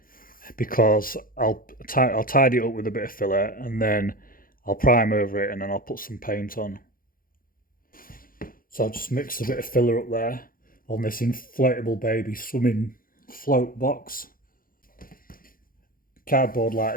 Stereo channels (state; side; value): late; right; 0.41 ms